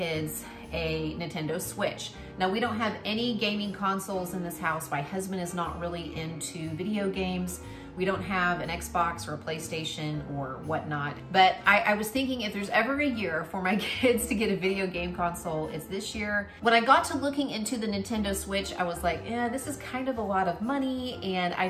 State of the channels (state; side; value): identical; both; correlation 1.00